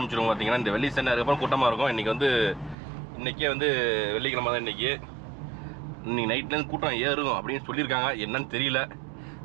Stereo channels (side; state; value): left; drops out; at 2.8 s